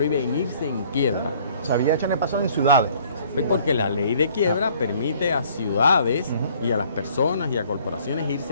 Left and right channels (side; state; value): both; inverted; correlation -0.58